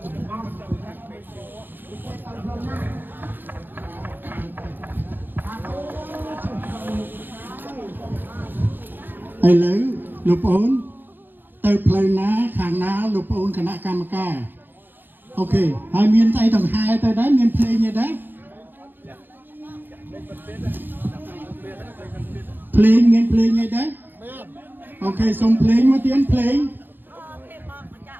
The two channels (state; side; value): late; left; 0.093 ms